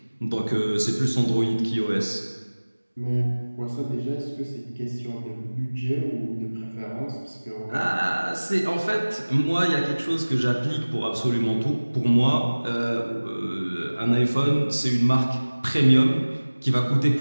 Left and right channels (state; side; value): inverted; both; correlation -1.00